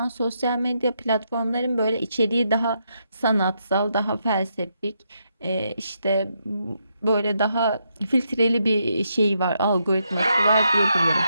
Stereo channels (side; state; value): both; inverted; correlation -0.79